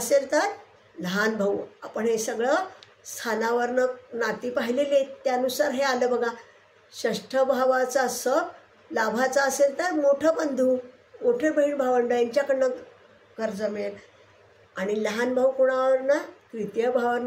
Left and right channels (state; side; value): identical; both; correlation 1.00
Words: तर लहान भाऊ. आपण हे सगळं स्थानावरनं नाती पाहिलेली आहेत, त्यानुसार हे आलं बघा. षष्ठ भावाचा लाभाचा असेल तर मोठं बंधू, मोठे बहीण भावंड यांच्याकडनं कर्ज मिळेल. आणि लहान भाऊ कोणावरनं? तृतीय